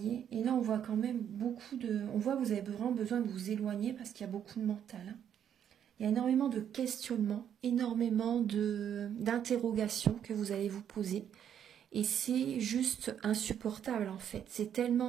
Et là, on voit quand même beaucoup de... On voit que vous avez vraiment besoin de vous éloigner parce qu'il y a beaucoup de mental. Il y a énormément de questionnements, énormément d'interrogations que vous allez vous poser. Et c'est juste insupportable en fait. C'est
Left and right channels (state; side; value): quieter; left; 9.2 dB